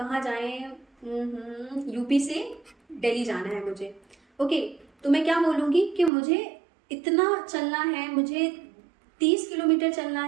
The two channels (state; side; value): drops out; left; at 6.1 s